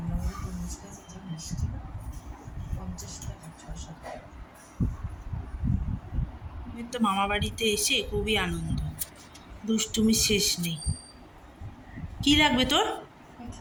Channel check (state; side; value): identical; both; correlation 1.00